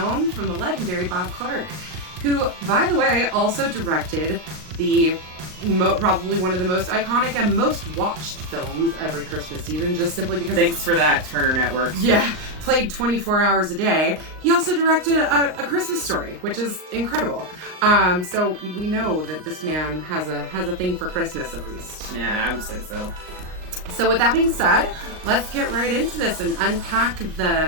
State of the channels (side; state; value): left; late; 39 ms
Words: from the legendary Bob Clark, who, by the way, also directed the probably one of the most iconic and most watched films every Christmas season, just simply because... Thanks for that, Turner Network. Yeah, played 24 hours a day. He also directed a Christmas Story, which is incredible. So we know that this man has a thing for Christmas, at least. Yeah, I would say so. So with that being said, let's get right into this and unpack